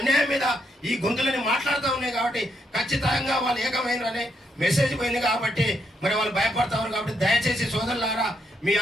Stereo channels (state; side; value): normal; both; correlation 0.77